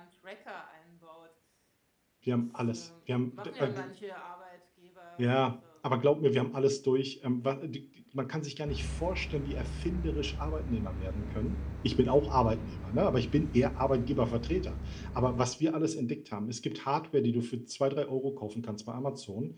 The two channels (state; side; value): identical; both; correlation 1.00